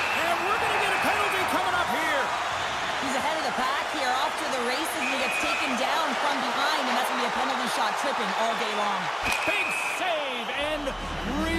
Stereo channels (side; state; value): both; identical; correlation 1.00